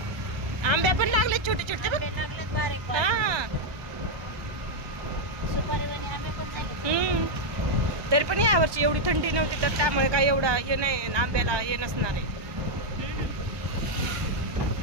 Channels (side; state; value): left; late; 1.2 ms